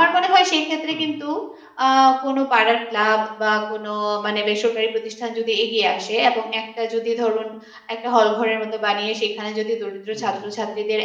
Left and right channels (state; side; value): identical; both; correlation 1.00